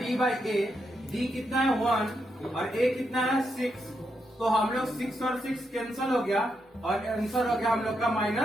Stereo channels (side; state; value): both; normal; correlation 0.82